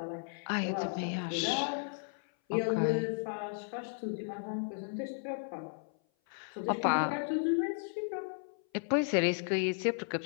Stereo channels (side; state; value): right; silent; 55 dB below the other